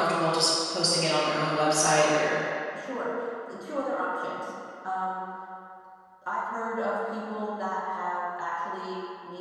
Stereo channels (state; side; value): identical; both; correlation 1.00